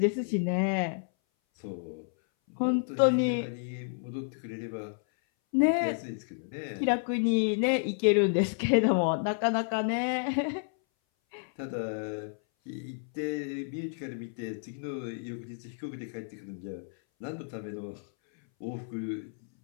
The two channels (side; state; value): right; silent; 57 dB below the other